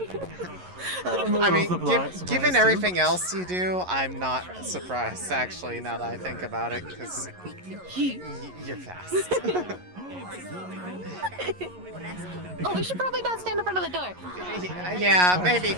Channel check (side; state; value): left; late; 11 ms